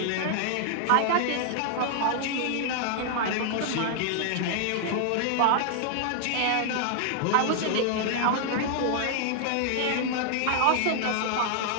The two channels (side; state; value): both; different; correlation -0.01